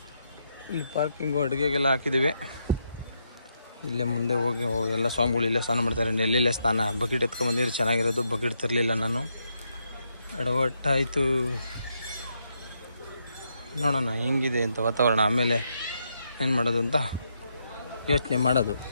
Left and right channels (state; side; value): inverted; both; correlation -0.79